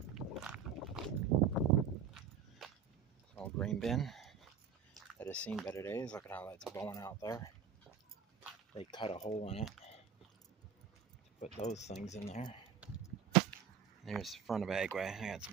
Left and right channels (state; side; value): quieter; left; 7.2 dB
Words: It's an old grain bin that has seen better days. Look at how that's bowing out there. They cut a hole in it to put those things in there. There's the front of Agway. I got